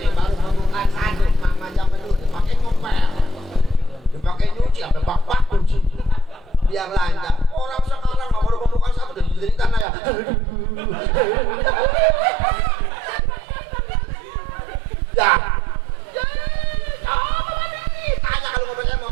baru membuka sanduk, macam dulu dipakai ngopel, dipakai nyuci, sampai bak-bak cuci, biar lancar. Orang sekarang nggak baru membuka sanduk, udah jadi tanah ya. Ya. Tanya kalau ngomongnya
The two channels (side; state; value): left; drops out; at 9.9 s